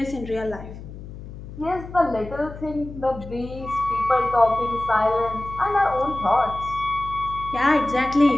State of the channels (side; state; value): left; noise; hum, 13 dB below the sound